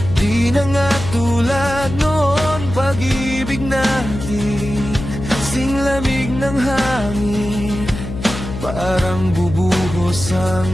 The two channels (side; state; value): left; noise; hum, 8 dB below the sound